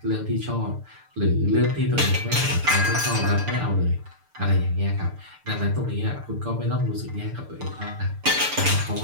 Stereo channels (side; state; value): left; late; 6.8 ms